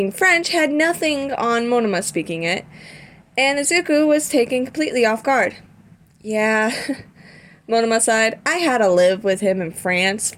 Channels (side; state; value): both; identical; correlation 1.00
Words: French had nothing on Monoma speaking it, and Izuku was taken completely off guard. Yeah, Monoma sighed. I had to live with him in France